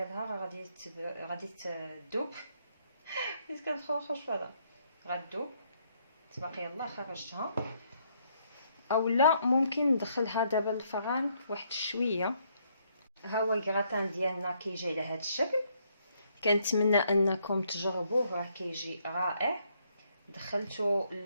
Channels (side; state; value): both; inverted; correlation -0.72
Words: راه غادي تذوب حيت كنخرج فهذا غتذوب. تبقى يلاه خرجتها اولا ممكن ندخلها دابا للفران واحد شويه. ها هو الكراتان ديالنا كيجي على هذا الشكل. كنتمنى انكم تجربوه راه كيجي رائع. دخلته